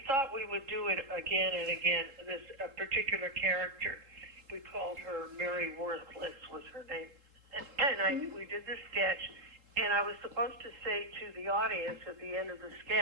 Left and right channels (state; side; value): late; left; 3.7 ms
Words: thought we would do it again and again. This particular character, we called her Mary Worthless was her name, and we did this sketch, and I was supposed to say to the audience at the end of the